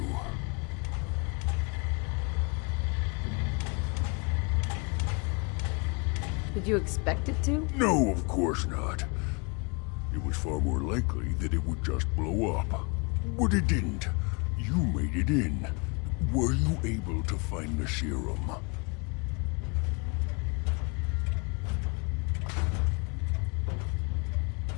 Did you expect it to? No, of course not. It was far more likely that it would just blow up. But it didn't. You made it in. Were you able to find the serum?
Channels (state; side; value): quieter; right; 31.7 dB